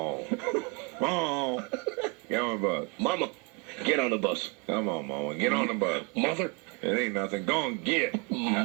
Come on. Get on the bus. Mama, get on the bus. Come on, Mama. Get on the bus. Mother. It ain't nothing. Go on, get.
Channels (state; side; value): quieter; left; 29.9 dB